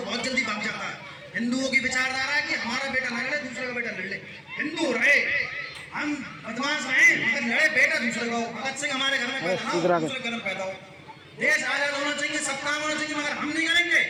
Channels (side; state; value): both; identical; correlation 1.00